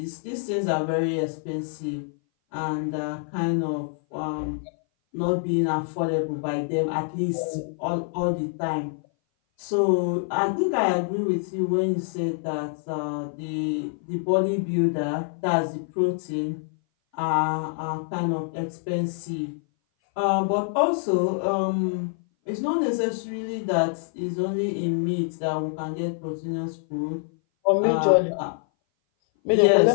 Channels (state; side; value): silent; right; 58 dB below the other